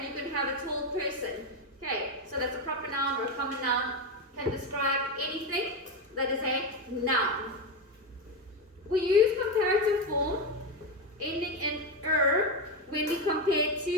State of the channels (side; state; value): both; normal; correlation 0.12